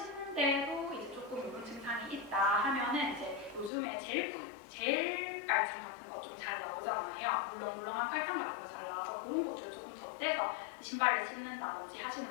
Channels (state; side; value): drops out; right; at 3.7 s